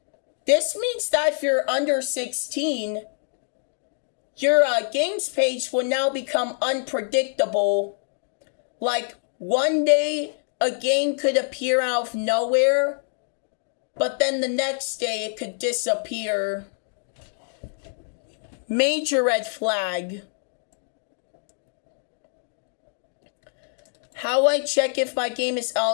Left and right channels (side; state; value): right; silent; digital silence